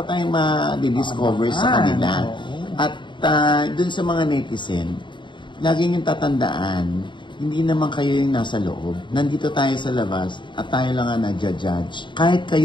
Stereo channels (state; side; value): late; right; 0.23 ms